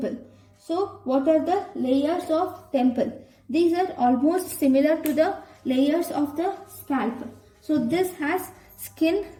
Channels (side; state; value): both; identical; correlation 1.00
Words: So what are the layers of temple? These are almost similar to the layers of the scalp. So this has skin